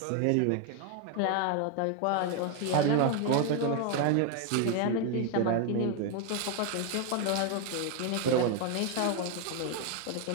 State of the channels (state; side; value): different; both; correlation 0.01